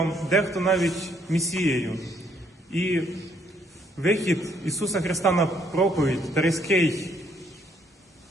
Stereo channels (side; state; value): both; normal; correlation 0.68